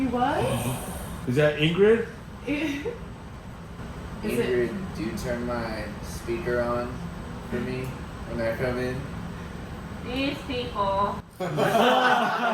was? Is that Ingrid? Is it? Ingrid, do you turn my speaker on for me when I come in? These people.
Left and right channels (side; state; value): both; identical; correlation 1.00